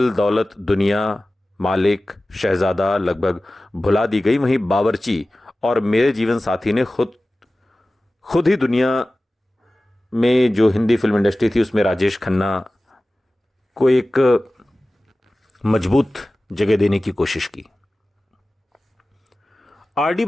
दौलत दुनिया, मालिक, शहजादा लगभग भुला दी गई, वहीं बावर्ची और मेरे जीवन साथी ने खुद ही दुनिया में जो हिंदी फिल्म इंडस्ट्री थी उसमें राजेश खन्ना को एक मजबूत जगह देने की कोशिश की। आर.डी.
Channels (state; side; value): normal; both; correlation 0.96